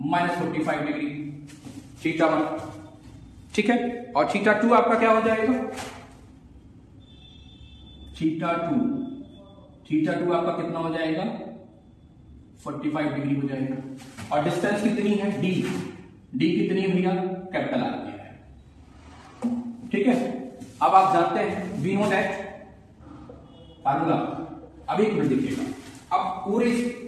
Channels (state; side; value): identical; both; correlation 1.00